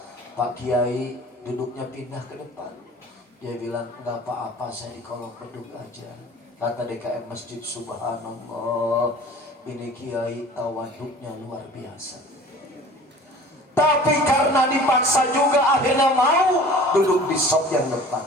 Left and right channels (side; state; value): both; normal; correlation 0.45